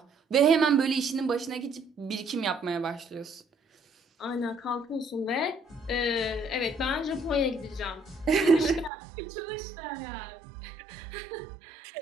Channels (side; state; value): left; drops out; at 8.9 s